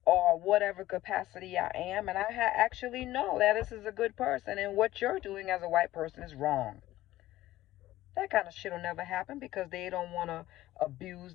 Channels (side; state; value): right; quieter; 15.6 dB